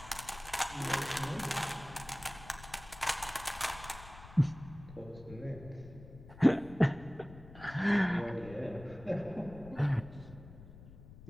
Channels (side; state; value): left; noise; rumble, 17 dB below the sound